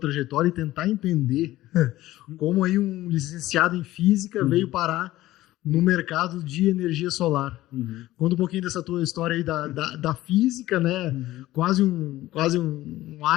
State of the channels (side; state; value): right; quieter; 16.1 dB